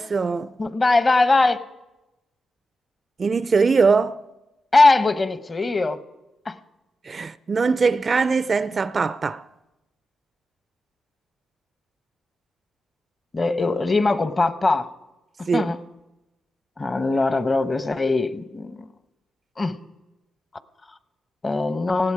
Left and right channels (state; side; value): normal; both; correlation 0.91